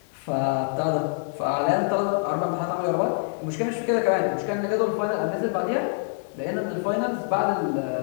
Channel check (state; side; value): silent; right; digital silence